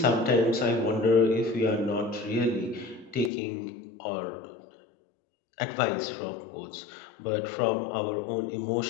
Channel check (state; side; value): drops out; right; at 3.3 s